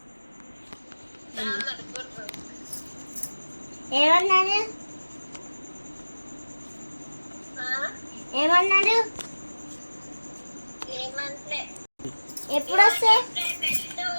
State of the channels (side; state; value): both; inverted; correlation -1.00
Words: ఏమన్నాడు? ఏమన్నాడు? ఎప్పుడు వస్తే